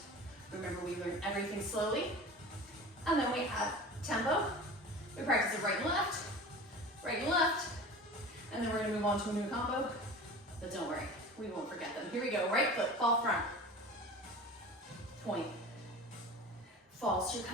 Remember, we learn everything slowly, and then we add tempo. We practice it right and left, and then we're gonna move on to a new combo, but don't worry, we won't forget them. Here we go, right foot, fall front, point, fall, so you're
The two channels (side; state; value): both; normal; correlation 0.37